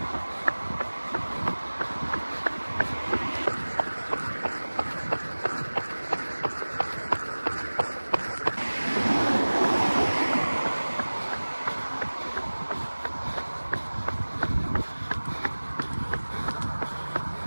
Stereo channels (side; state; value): both; inverted; correlation -1.00